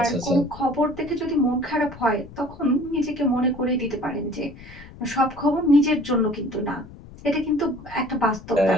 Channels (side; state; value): left; noise; rumble, 18 dB below the sound